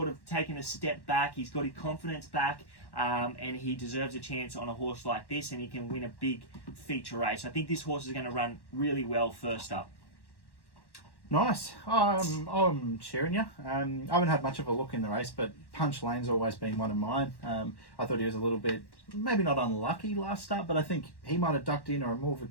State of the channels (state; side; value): late; right; 1.1 ms